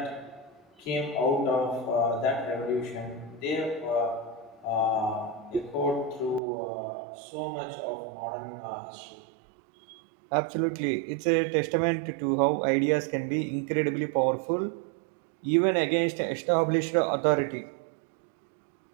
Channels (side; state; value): left; drops out; at 6.4 s